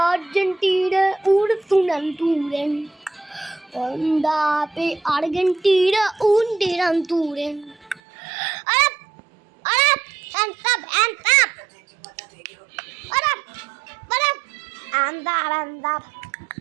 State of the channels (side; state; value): left; drops out; at 8.0 s